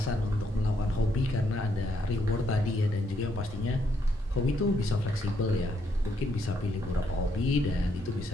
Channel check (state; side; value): normal; both; correlation 0.75